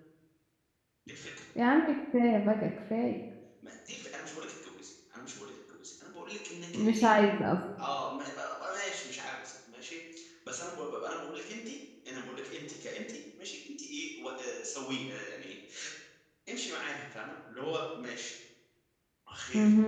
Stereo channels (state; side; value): identical; both; correlation 1.00